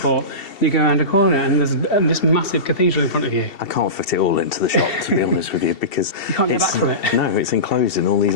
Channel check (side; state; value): right; late; 2.7 ms